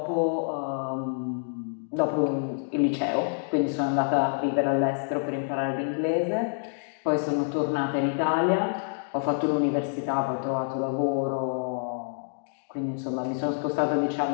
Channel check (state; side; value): silent; right; digital silence